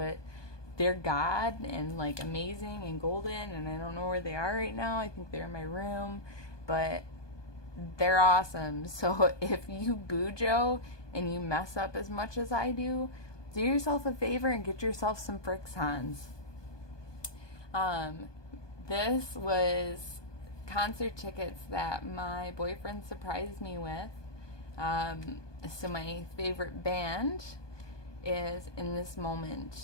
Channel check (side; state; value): right; late; 1.2 ms